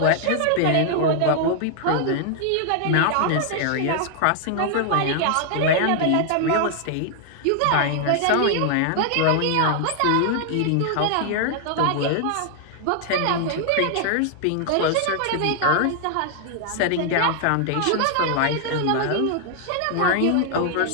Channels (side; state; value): both; different; correlation 0.00